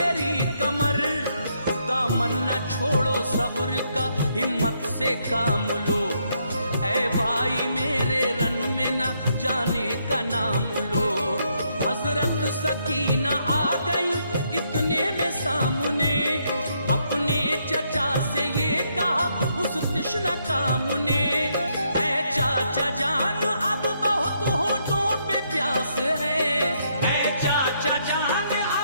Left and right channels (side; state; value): both; inverted; correlation -0.75